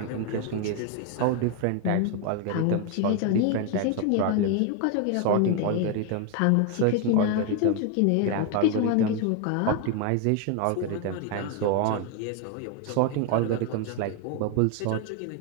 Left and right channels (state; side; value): different; both; correlation 0.01